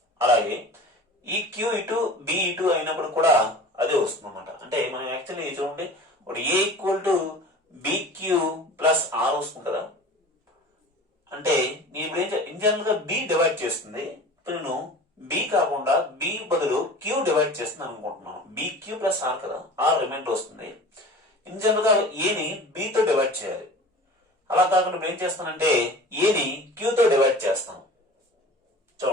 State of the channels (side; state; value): both; normal; correlation 0.40